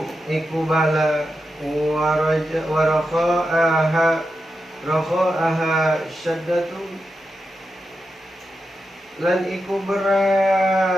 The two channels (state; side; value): normal; both; correlation 0.88